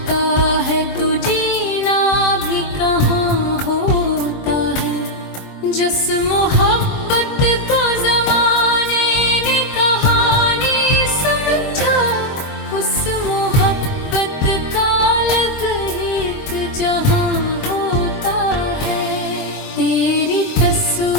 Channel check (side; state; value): right; late; 23 ms